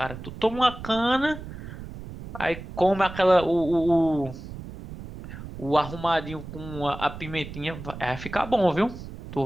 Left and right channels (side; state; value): right; noise; rumble, 12 dB below the sound